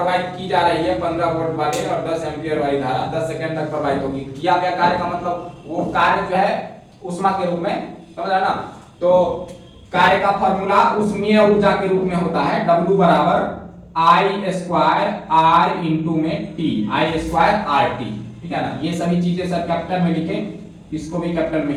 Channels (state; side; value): identical; both; correlation 1.00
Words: की जा रही है 15 वोल्ट वाली और 10 एम्पियर वाली धारा 10 सेकेंड तक प्रवाहित होगी। किया गया कार्य का मतलब वो कार्य जो है ऊष्मा के रूप में, समझा ना। तो कार्य का फॉर्मूला ऊष्मीय ऊर्जा के रूप में होता है W बराबर I स्क्वायर R इंटू में T, I स्क्वायर RT, ठीक है ना। ये सभी चीजें सर कैपिटल में लिखें, इसको भी कैपिटल में